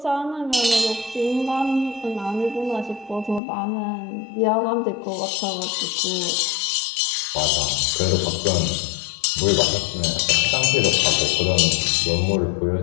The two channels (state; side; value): drops out; right; at 3.4 s